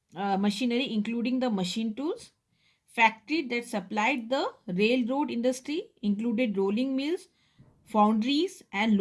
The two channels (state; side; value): identical; both; correlation 1.00